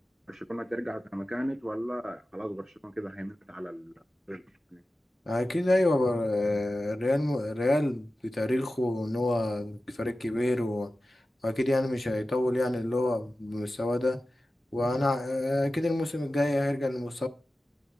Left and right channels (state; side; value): normal; both; correlation 0.94